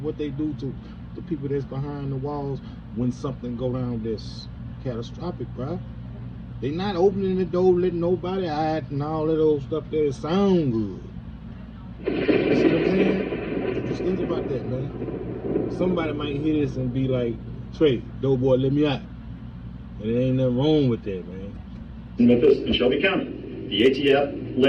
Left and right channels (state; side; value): identical; both; correlation 1.00